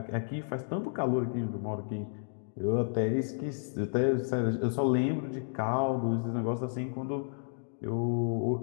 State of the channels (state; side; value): silent; right; digital silence